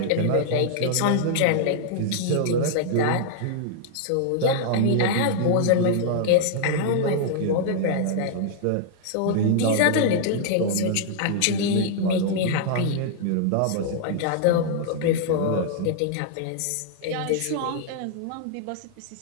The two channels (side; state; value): both; different; correlation -0.01